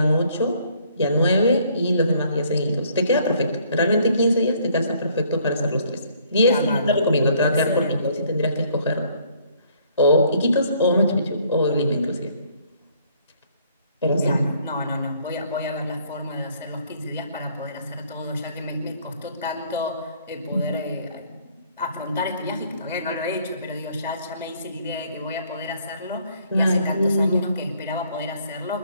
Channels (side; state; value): both; inverted; correlation -0.63